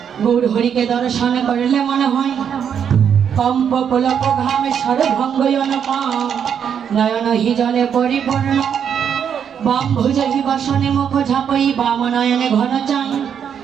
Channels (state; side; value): quieter; left; 8.0 dB